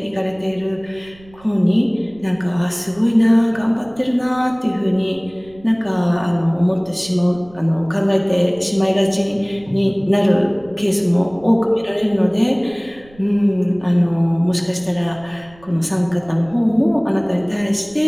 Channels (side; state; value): right; noise; rumble, 25 dB below the sound